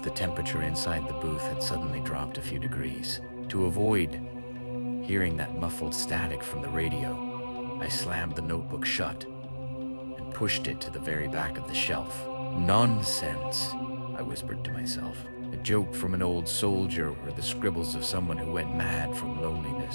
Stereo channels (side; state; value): both; inverted; correlation -1.00